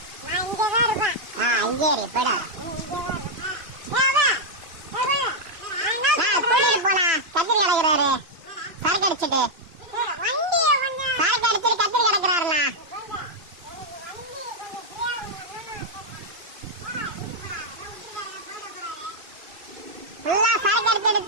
நான் இங்கே தான் இருப்பேன். இங்கே இரு பட. கத்திரி கிடக்குறாரு, சரக்கு அடிச்சுட்டு சரக்கு அடிச்சுட்டு கத்திரி கிடக்குறாருண்ணா. ஃபுல்லா சரக்கு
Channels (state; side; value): late; left; 3.0 ms